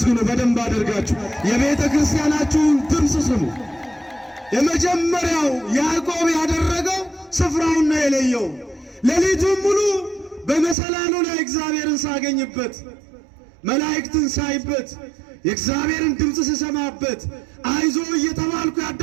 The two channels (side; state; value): left; drops out; at 10.8 s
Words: በደንብ አድርጋችሁ። የቤተ ክርስቲያናችሁን ድምፅ ስሙ። የመጀመሪያው ያዕቆብ ያደረገው ስፍራውን ነው የለየው። ሌሊቱን ሙሉ በመሰላሉ ላይ እግዚአብሔርን ሳገኝበት፣ መላእክትን ሳይበት፣ የእግዚአብሔርን ድምፅ ስሰማበት፣ አይዞ እየተባልኩ